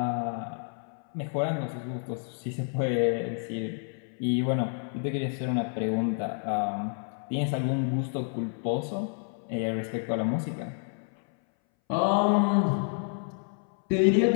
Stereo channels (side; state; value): right; silent; 58 dB below the other